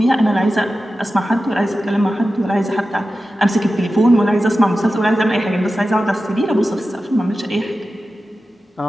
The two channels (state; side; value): normal; both; correlation 0.94